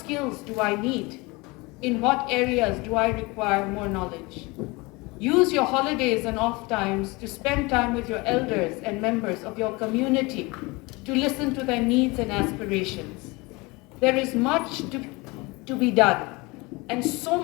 do I need? In what areas do I require more knowledge? Use your holidays and off times to spend time with your elders and members of your community to listen to their needs and aspirations. There is much to be done, and so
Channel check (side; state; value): right; quieter; 24.8 dB